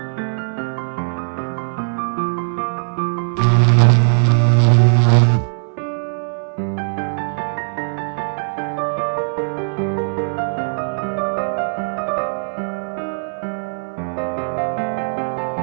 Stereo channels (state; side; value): silent; left; 60 dB below the other